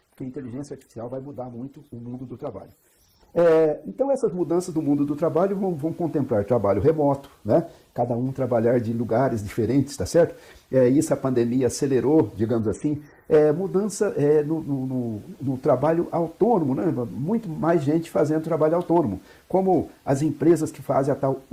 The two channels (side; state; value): both; identical; correlation 1.00